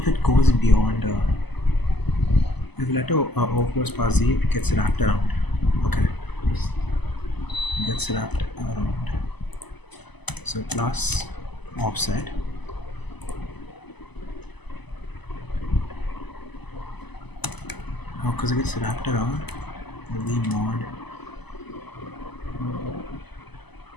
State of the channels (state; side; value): late; right; 0.99 ms